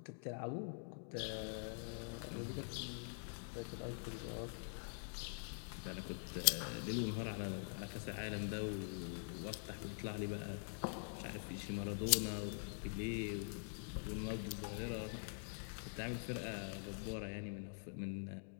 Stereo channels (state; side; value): silent; right; digital silence